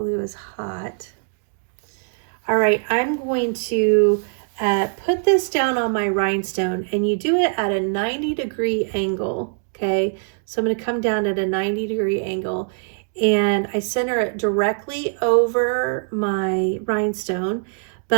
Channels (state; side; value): silent; left; digital silence